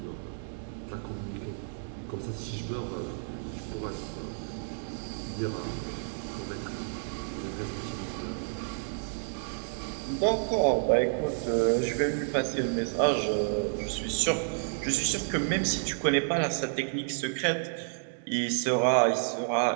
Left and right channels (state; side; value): silent; left; digital silence